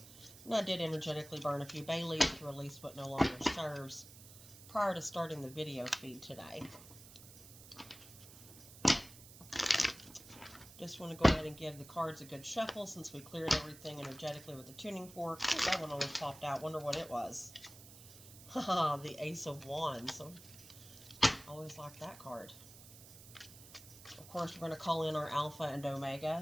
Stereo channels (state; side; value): noise; right; hiss, 18 dB below the sound